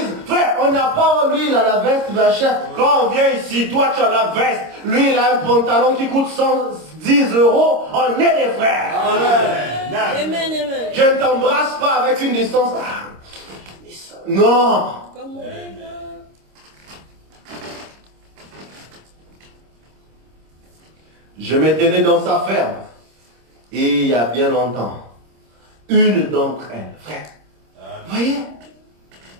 frère, on n'a pas lui, il a la veste, machin. Quand on vient ici, toi tu as la veste, lui il a un pantalon qui coûte 110 euros, on est des frères. Amen. Amen. Je ne t'embrasse pas avec une distance. Non. Comme on est là. Je me tenais dans sa ferme. Et il y a bien longtemps, une d'entre elles, frère, voyez,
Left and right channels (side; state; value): left; late; 26 ms